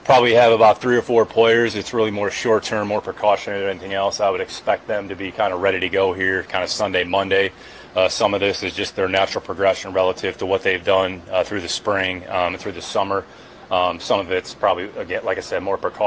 probably have about 3 or 4 players. It's really more short-term, more precautionary than anything else. I would expect them to be kind of ready to go here kind of Sunday, Monday. Some of this is just their natural progression relative to what they've done through the spring and through the summer. Some of it's probably, again, like I said, more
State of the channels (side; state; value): both; identical; correlation 1.00